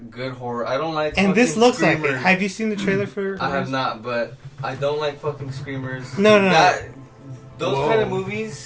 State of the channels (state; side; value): identical; both; correlation 1.00